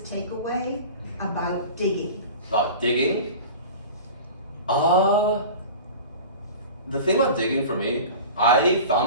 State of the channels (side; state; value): both; inverted; correlation -0.36